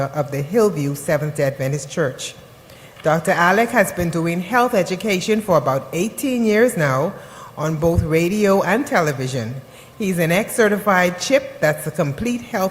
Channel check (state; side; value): identical; both; correlation 1.00